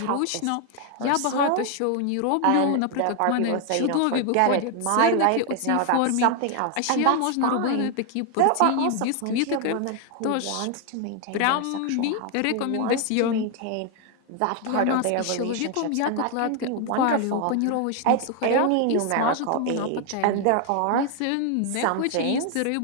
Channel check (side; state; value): both; different; correlation 0.00